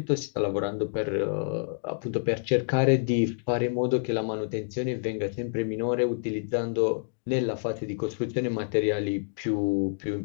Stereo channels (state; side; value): silent; right; digital silence